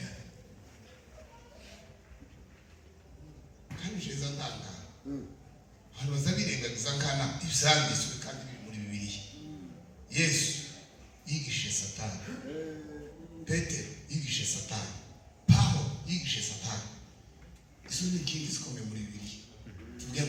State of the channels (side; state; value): both; identical; correlation 1.00